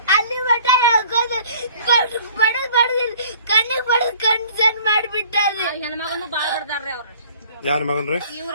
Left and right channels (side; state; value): both; inverted; correlation -0.52